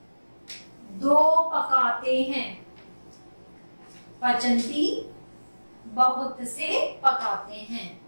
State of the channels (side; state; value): both; inverted; correlation -1.00